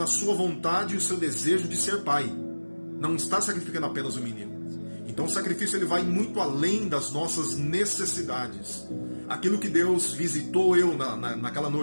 a sua vontade e o seu desejo de ser pai. Não está sacrificando apenas o menino. Então o sacrifício ele vai muito além das nossas necessidades. Aquilo que Deus visitou eu naquela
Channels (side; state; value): both; inverted; correlation -1.00